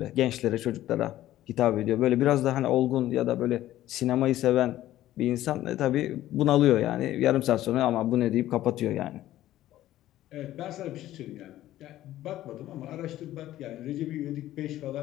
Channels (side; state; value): right; quieter; 14.1 dB